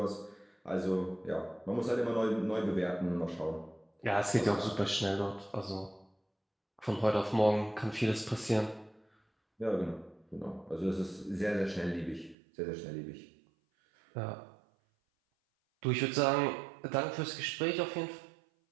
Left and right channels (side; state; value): left; drops out; at 12.4 s